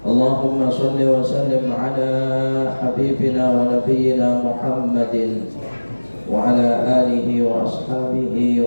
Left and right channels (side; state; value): both; inverted; correlation -1.00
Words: اللهم صل وسلم على حبيبنا ونبينا محمد وعلى آله وأصحابه